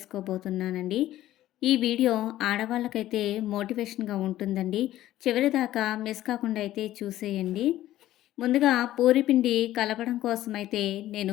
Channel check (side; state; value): right; quieter; 14.1 dB